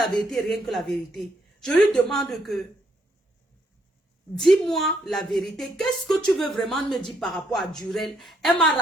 vérité, rien que la vérité. Je lui demande que dis-moi la vérité. Qu'est-ce que tu veux vraiment me dire par rapport à Durel? Elle m'a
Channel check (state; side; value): normal; both; correlation 0.73